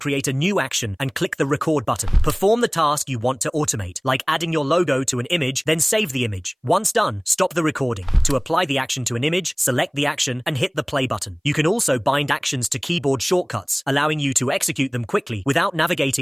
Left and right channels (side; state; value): both; identical; correlation 1.00